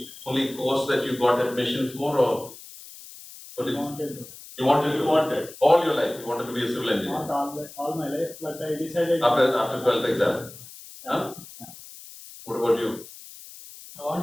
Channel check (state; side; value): noise; left; hiss, 17 dB below the sound